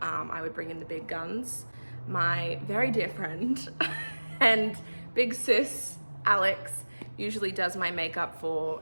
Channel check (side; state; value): both; inverted; correlation -1.00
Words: would bring in the big guns. My very dear friend and big sis, Alex, usually does my makeup for